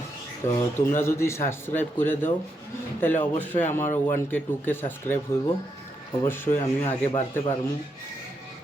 তো তোমরা যদি সাবস্ক্রাইব করে দাও তাহলে অবশ্যই আমার 1K 2K সাবস্ক্রাইব হইব, অবশ্যই আমিও আগে বাড়তে পারবো,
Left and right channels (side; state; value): both; normal; correlation 0.81